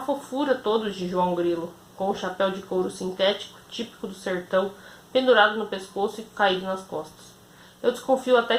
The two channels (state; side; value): identical; both; correlation 1.00